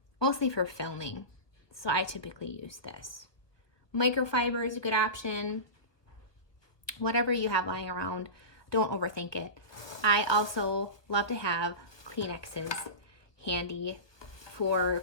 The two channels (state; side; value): late; right; 1.2 ms